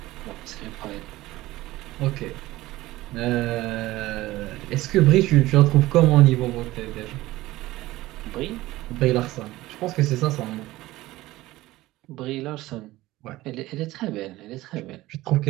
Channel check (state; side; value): quieter; left; 17.6 dB